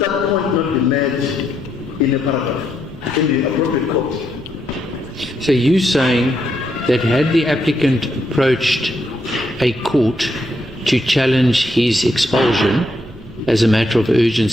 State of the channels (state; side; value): noise; right; rumble, 22 dB below the sound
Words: point not be made in a paragraph in the appropriate court? So you're saying that had the applicant approached a court to challenge his expulsion as a matter of